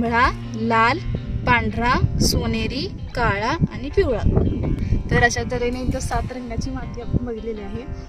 लाल, पांढरा, सोनेरी, काळा आणि पिवळा. तर अशा तऱ्हेने इथं 7 रंगाची माती आपण बघितलेली आहे.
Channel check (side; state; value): both; identical; correlation 1.00